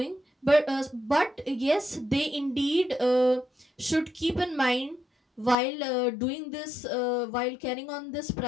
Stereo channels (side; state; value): right; drops out; at 5.6 s